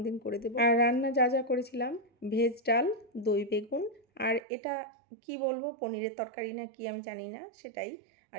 দিন করে দেবো। আর রান্না যা যা করেছিলাম, ভেজ ডাল, দই বেগুন, আর এটা কি বলবো, পনিরের তরকারি না কি আমি জানি না, সেটাই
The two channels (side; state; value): left; drops out; at 4.4 s